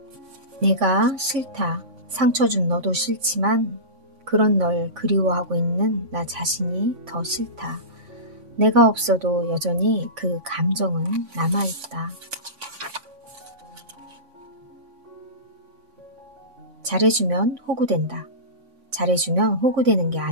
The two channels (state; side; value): late; left; 3.5 ms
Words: 내가 싫다. 상처 준 너도 싫지만 그런 널 그리워하고 있는 나 자신이 더 싫다. 내가 없어도 여전히 그 감정은 남아있다. 잘해주면 호구된다. 잘해주면 호구되는 게